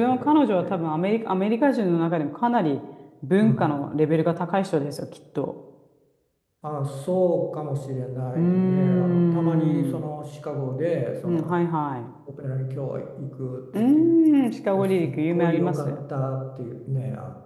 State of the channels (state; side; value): identical; both; correlation 1.00